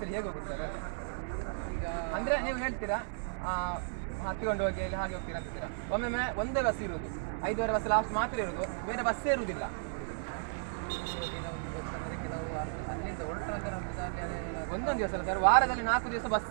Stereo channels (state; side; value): silent; left; 55 dB below the other